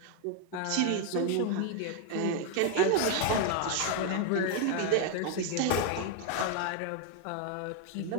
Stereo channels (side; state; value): both; different; correlation 0.01